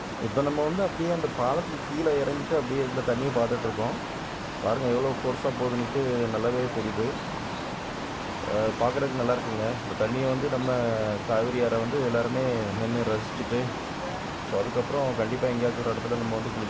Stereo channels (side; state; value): both; identical; correlation 1.00